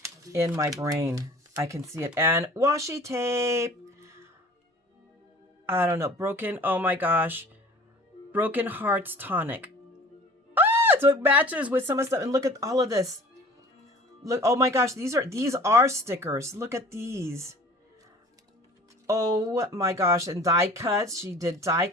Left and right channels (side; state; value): both; normal; correlation 0.45